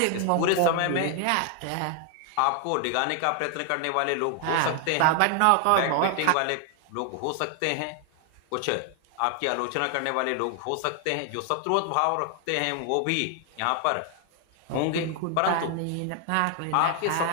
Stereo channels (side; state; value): both; different; correlation 0.00